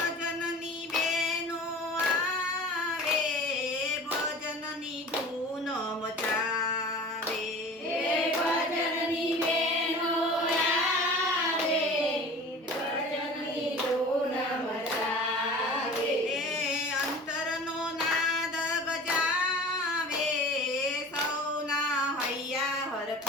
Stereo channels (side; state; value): both; normal; correlation 0.40